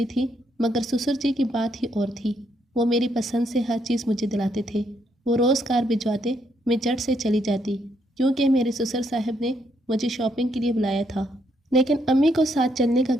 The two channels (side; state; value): both; normal; correlation 0.75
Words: تھی، مگر سسر جی کی بات ہی اور تھی۔ وہ میری پسند سے ہر چیز مجھے دلاتے تھے۔ وہ روز کار بھجواتے، میں جٹ سے چلی جاتی، کیونکہ میرے سسر صاحب نے مجھے شاپنگ کے لیے بلایا تھا۔ لیکن امی کو ساتھ چلنے کا